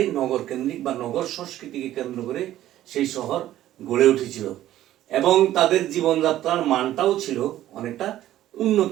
নগর কেন্দ্রিক বা নগর সংস্কৃতিকে কেন্দ্র করে সেই শহর গড়ে উঠেছিল। এবং তাদের জীবনযাত্রার মানটাও ছিল অনেকটা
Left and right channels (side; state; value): left; quieter; 13.4 dB